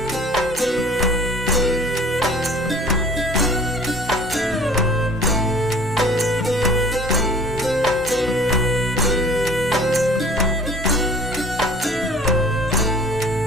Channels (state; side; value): normal; both; correlation 0.49